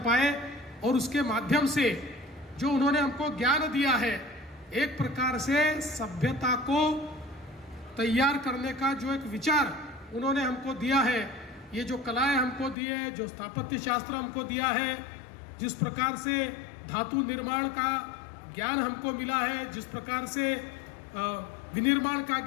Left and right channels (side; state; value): right; drops out; at 12.8 s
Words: पाए, और उसके माध्यम से जो उन्होंने हमको ज्ञान दिया है, एक प्रकार से सभ्यता को तैयार करने का जो एक विचार उन्होंने हमको दिया है, ये जो कलाएं हमको दी है, जो स्थापत्य शास्त्र हमको दिया है, जिस प्रकार से धातु निर्माण का ज्ञान हमको मिला है, जिस प्रकार से विनिर्माण का